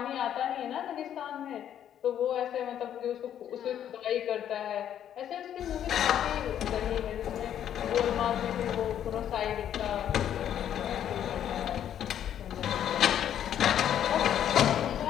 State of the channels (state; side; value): quieter; right; 10.1 dB